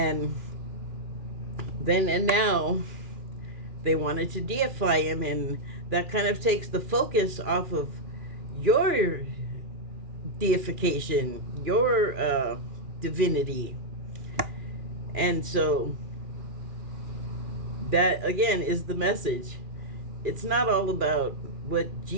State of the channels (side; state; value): left; late; 2.4 ms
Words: then and now they wanted to deify him, and that kind of takes the focus off of your deification, your divinity. And so that again is the message. It's not all about what